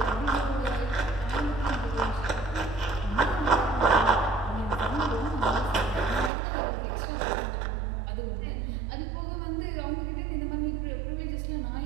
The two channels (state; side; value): drops out; left; at 6.3 s